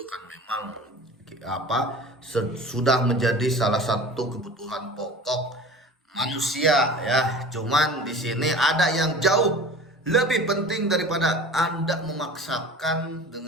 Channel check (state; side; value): normal; both; correlation 0.40